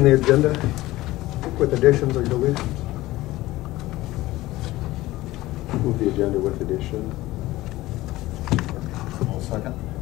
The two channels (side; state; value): right; quieter; 17.6 dB